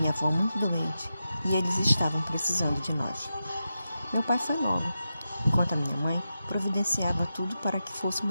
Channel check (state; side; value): inverted; both; correlation -0.90